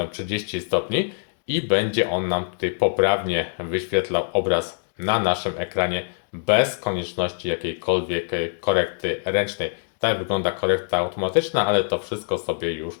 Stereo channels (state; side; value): silent; right; digital silence